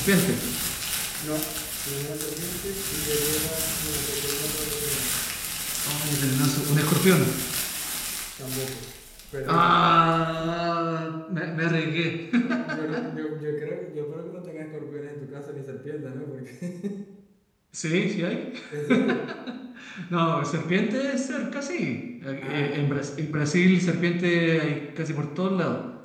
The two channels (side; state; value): both; identical; correlation 1.00